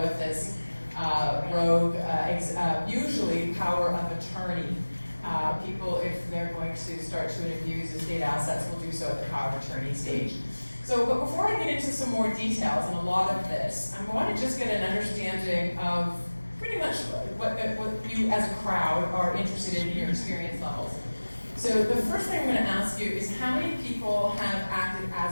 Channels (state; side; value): inverted; both; correlation -1.00